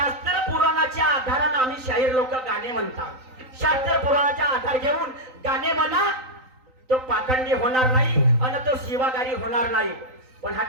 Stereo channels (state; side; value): late; left; 3.9 ms